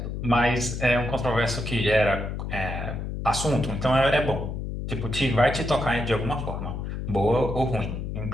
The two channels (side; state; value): left; noise; hum, 5 dB below the sound